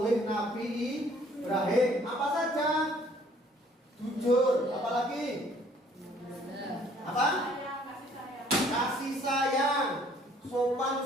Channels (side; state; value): both; normal; correlation 0.59